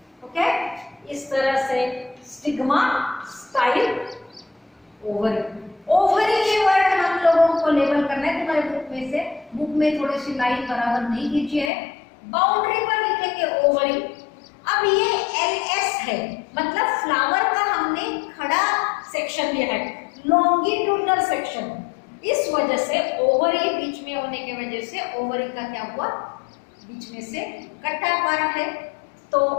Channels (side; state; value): right; drops out; at 11.7 s